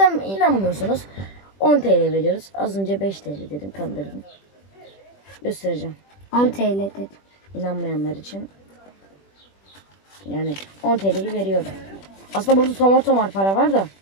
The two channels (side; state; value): right; late; 21 ms